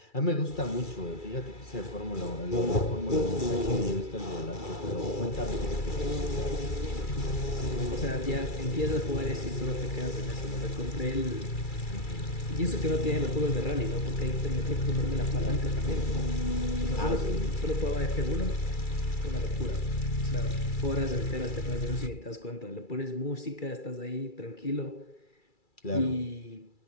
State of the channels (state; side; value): late; right; 2.3 ms